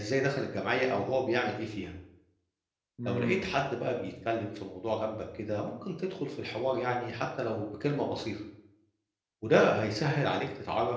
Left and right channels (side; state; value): both; identical; correlation 1.00